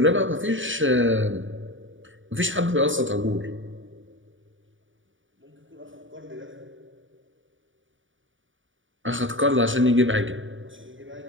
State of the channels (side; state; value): left; late; 0.56 ms